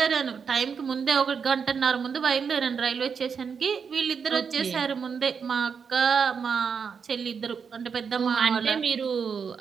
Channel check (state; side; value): quieter; left; 6.3 dB